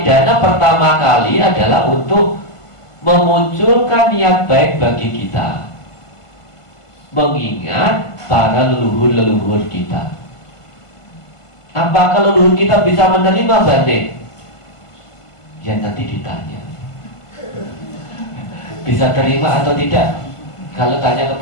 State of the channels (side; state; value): right; late; 1.5 ms